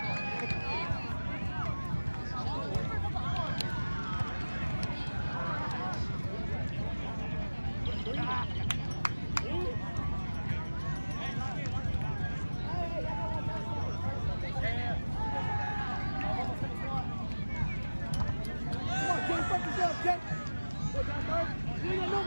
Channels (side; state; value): both; inverted; correlation -1.00